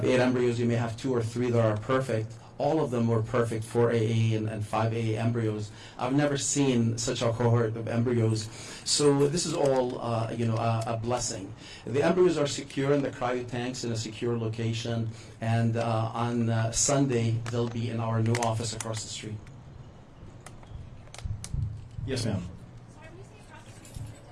8 embryos, you may have 2 or 3 that are perfect. All of them were perfect, 4AA and 5AA embryos. I've never seen such a cohort of embryos. So this is all, a blessing. The embryos are secure in the cryo tanks in a secure location, and on Sunday, they'll be in our new office across the street. Yes, ma'am. Sorry, when you say across the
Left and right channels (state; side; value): identical; both; correlation 1.00